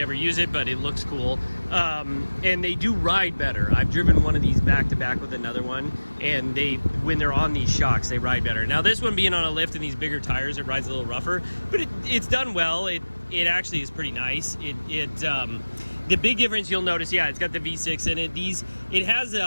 ever use it, but it looks cool. And they do ride better. I've driven one of these back to back with another one, and when they're on these shocks, they ride better. Now this one being on a lift and these bigger tires, it rides a little rougher, but it's done well. It actually is pretty nice. The big difference you'll notice, yeah, it's got the V6 in it. It has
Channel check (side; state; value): both; inverted; correlation -1.00